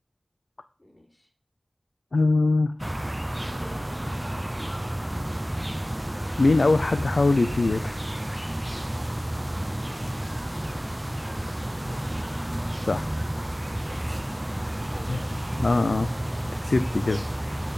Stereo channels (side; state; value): both; normal; correlation 0.98